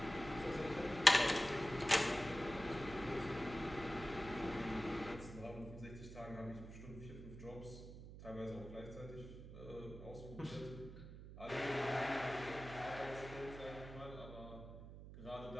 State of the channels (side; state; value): right; noise; hum, 12 dB below the sound